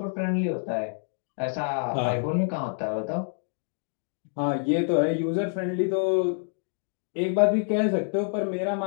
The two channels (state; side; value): silent; right; digital silence